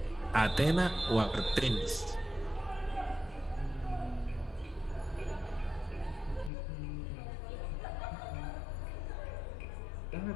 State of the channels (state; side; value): drops out; right; at 6.5 s